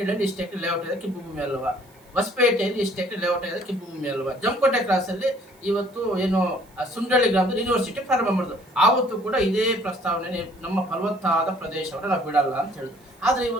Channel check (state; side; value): noise; right; hiss, 30 dB below the sound